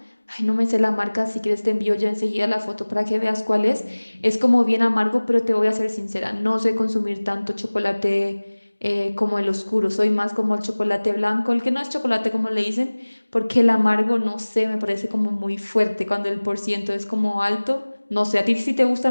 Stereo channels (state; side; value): inverted; both; correlation -1.00